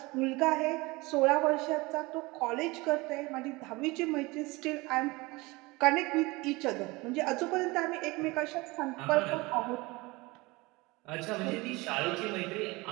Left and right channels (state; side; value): quieter; left; 23.3 dB